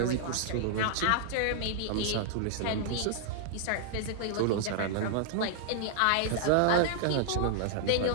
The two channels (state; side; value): different; both; correlation -0.01